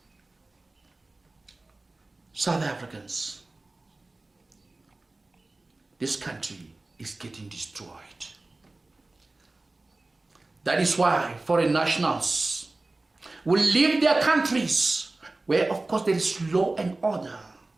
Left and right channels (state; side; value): quieter; left; 3.1 dB